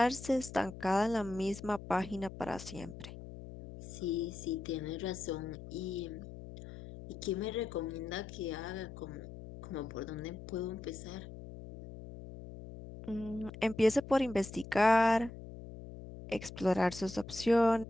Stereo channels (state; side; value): noise; left; hum, 13 dB below the sound